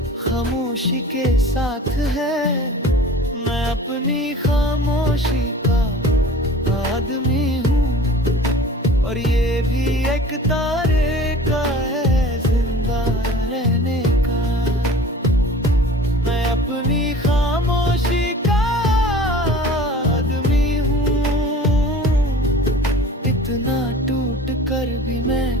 खामोशी के साथ है। मैं अपनी खामोशी का आदमी हूँ, और ये भी एक तरीका है जिंदा रहने का। मैं अपनी खामोशी का आदमी हूँ, इतना टूट कर भी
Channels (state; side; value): normal; both; correlation 0.43